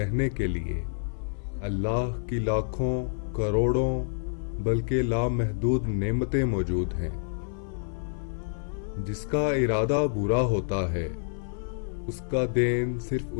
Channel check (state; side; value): silent; right; 59 dB below the other